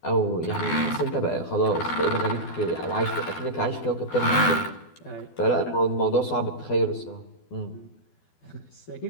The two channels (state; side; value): late; right; 12 ms